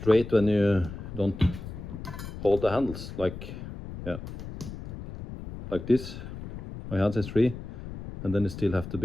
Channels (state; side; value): noise; left; rumble, 10 dB below the sound